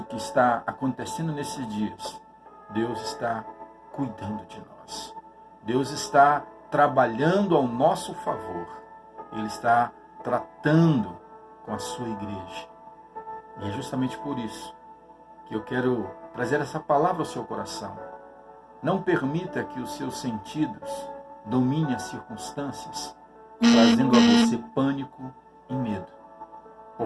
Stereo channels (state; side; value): identical; both; correlation 1.00